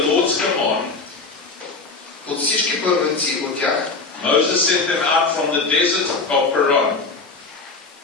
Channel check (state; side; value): quieter; right; 3.9 dB